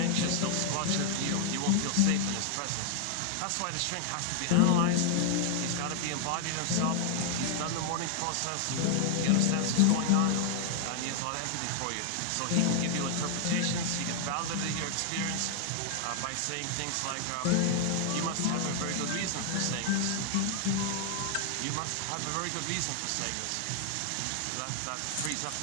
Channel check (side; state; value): both; different; correlation 0.00